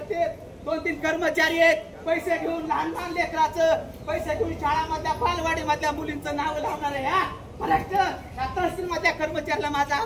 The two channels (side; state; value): both; identical; correlation 1.00